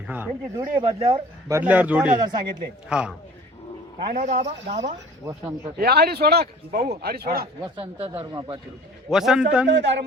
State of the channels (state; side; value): normal; both; correlation 0.47